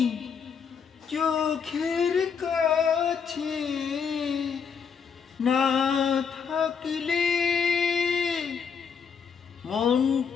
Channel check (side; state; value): right; quieter; 6.4 dB